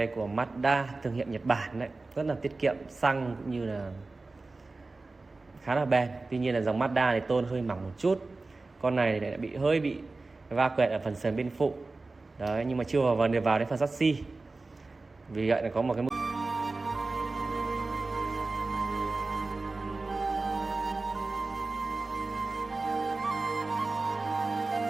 của Mazda thương hiệu Nhật Bản đấy, rất là tiết kiệm xăng cũng như là khá là bền. Tuy nhiên là dòng Mazda này tôn hơi mỏng một chút. Con này lại hơi bị va quẹt ở phần sườn bên phụ. Đấy, nhưng mà chưa vào đến phần chassis. Vì vậy là có một cái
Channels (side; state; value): left; quieter; 3.5 dB